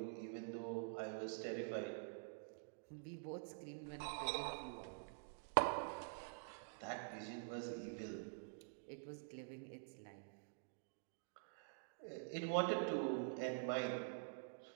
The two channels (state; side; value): silent; left; digital silence